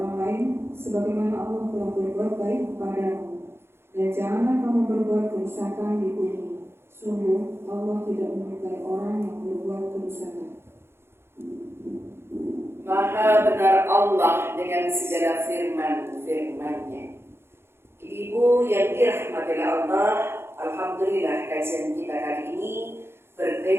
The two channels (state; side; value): late; left; 0.12 ms